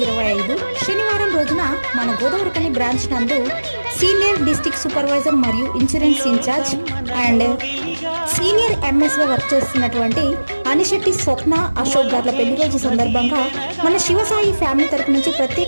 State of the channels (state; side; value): inverted; both; correlation -1.00